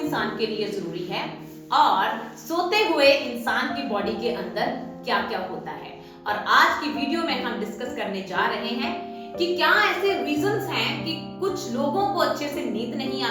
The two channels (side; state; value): both; identical; correlation 1.00